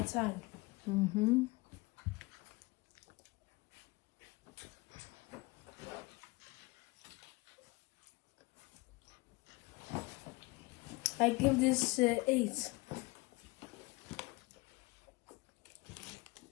Mm-hmm. I give this 8.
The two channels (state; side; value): quieter; right; 24.2 dB